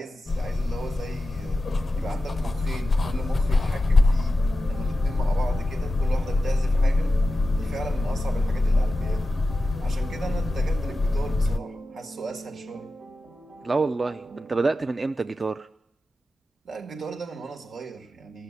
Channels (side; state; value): both; normal; correlation 0.92